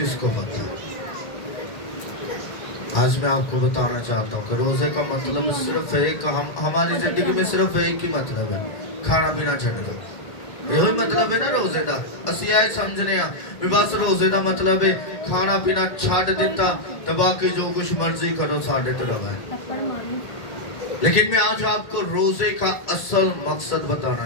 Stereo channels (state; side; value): late; right; 2.3 ms